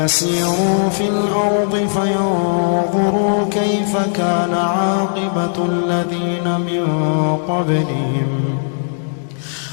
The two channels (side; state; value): right; silent; digital silence